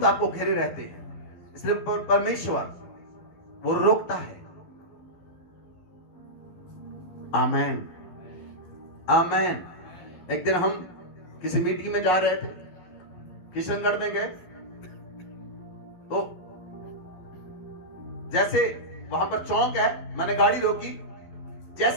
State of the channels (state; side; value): late; right; 11 ms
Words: आपको घेरे रहते हैं। इसलिए परमेश्वर वो रोकता है। आमेन, आमेन। एक दिन हम किसी मीटिंग में जा रहे थे, किशनगढ़ में गए, तो जैसे वहां पर चौक है, मैंने गाड़ी रोकी।